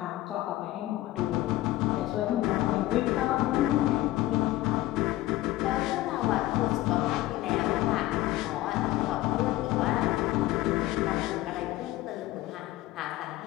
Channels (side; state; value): right; quieter; 16.4 dB